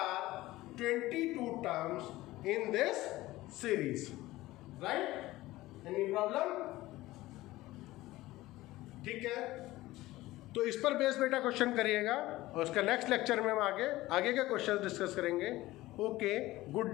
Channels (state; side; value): quieter; right; 17.6 dB